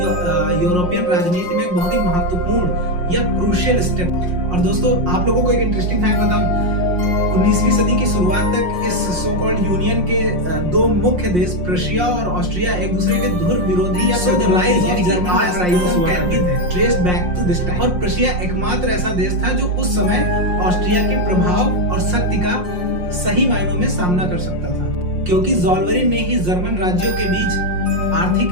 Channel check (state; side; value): late; left; 5.6 ms